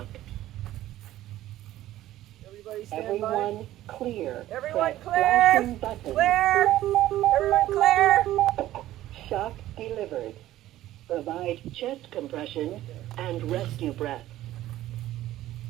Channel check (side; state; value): left; quieter; 14.4 dB